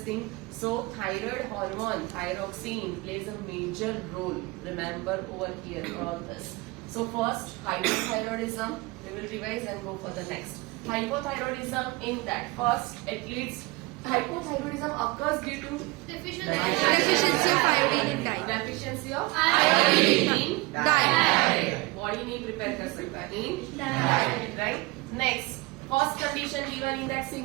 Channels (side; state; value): left; quieter; 22.9 dB